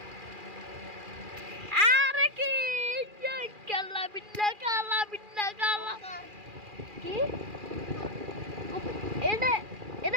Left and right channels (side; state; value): left; late; 2.4 ms